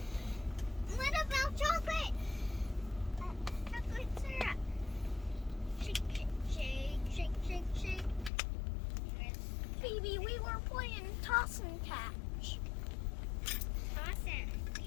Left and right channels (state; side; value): drops out; right; at 8.3 s